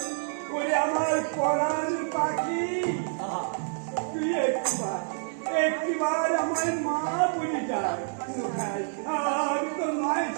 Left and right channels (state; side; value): silent; left; digital silence